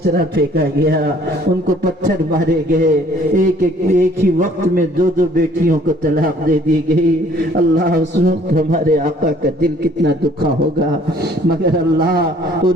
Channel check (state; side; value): normal; both; correlation 0.58